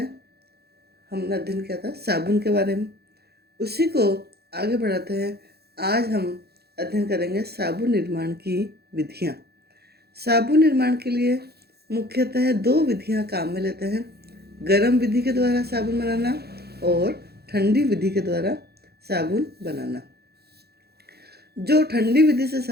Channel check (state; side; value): late; left; 0.46 ms